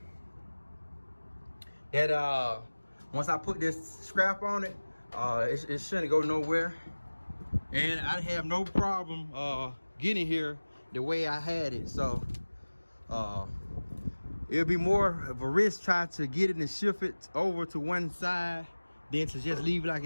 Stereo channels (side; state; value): both; inverted; correlation -1.00